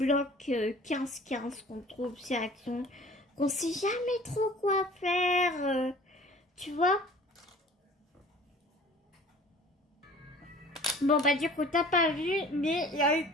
15-15 qu'on trouve chez Action, qu'on sait jamais trop quoi faire, tu vois. Bon bah du coup t'as pas vu, mais il y a une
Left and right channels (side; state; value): both; normal; correlation 0.47